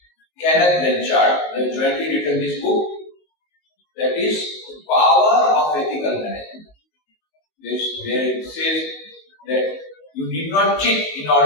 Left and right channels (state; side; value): late; right; 19 ms